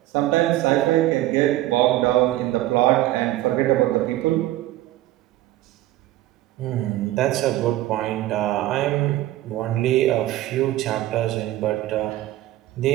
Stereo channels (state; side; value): quieter; left; 15.6 dB